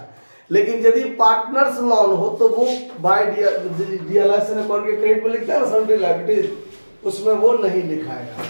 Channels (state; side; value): inverted; both; correlation -1.00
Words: लेकिन यदि पार्टनर्स लोन हो तो वो बाय डियलाइजेशन अकाउंट के क्रेडिट में लिखता है ना सन्ड्री लायबिलिटीज, उसमें वो नहीं लिखाएगा।